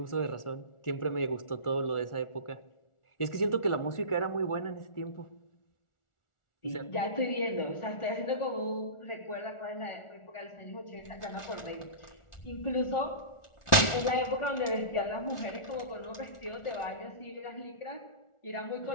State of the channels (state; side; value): late; right; 1.4 ms